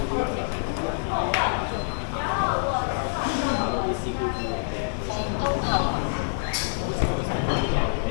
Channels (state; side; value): silent; right; 59 dB below the other